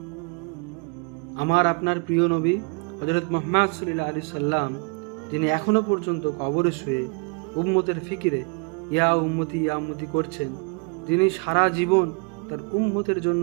আমার আপনার প্রিয় নবী হযরত মুহাম্মদ সাল্লাল্লাহু আলাইহি সাল্লাম, যিনি এখনো পর্যন্ত কবরে শুয়ে উম্মতের ফিকিরে ইয়া উম্মতি করছেন, যিনি সারা জীবন তার উম্মতের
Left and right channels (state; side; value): quieter; left; 33.5 dB